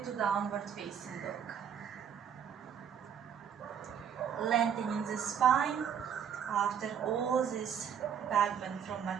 to downward facing dog. Lengthening the spine after all this back bend from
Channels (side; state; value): left; quieter; 8.1 dB